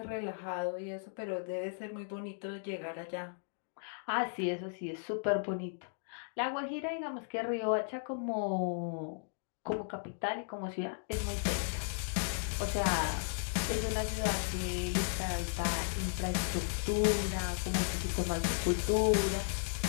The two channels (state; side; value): silent; right; digital silence